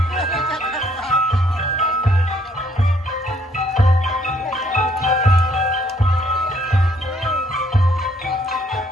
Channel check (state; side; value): normal; both; correlation 0.66